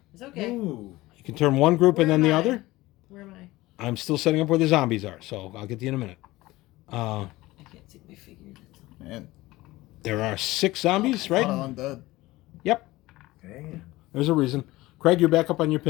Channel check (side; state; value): right; quieter; 18.9 dB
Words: It's okay. Ooh. You can turn one group and Where then the am I? other. Where am I? I'm still setting up where the zombies are, so I'll get to you in a minute. I can't see my figure. Man. There are 6 zombies, right? I'm dead. Yep. There's a reason. Craig, you're back up on your